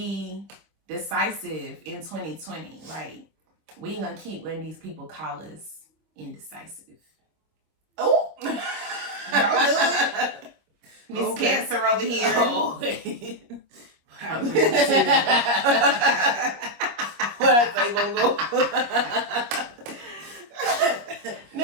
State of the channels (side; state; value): left; late; 25 ms